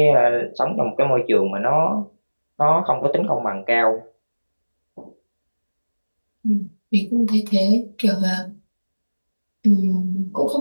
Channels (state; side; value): inverted; both; correlation -1.00